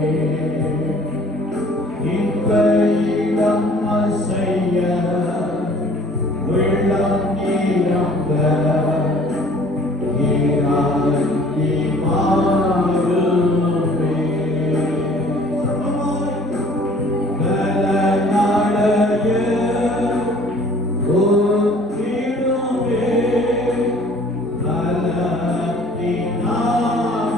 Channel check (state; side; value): normal; both; correlation 0.52